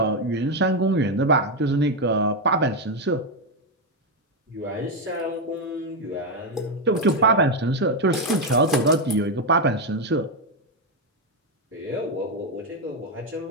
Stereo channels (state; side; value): normal; both; correlation 0.05